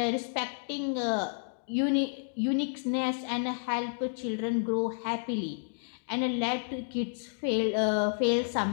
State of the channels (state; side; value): silent; right; digital silence